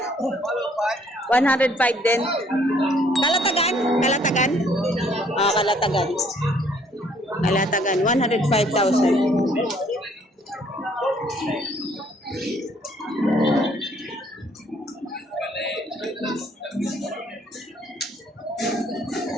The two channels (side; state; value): both; normal; correlation 0.62